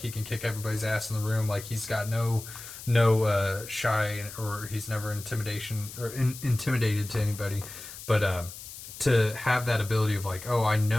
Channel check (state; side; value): noise; left; hiss, 13 dB below the sound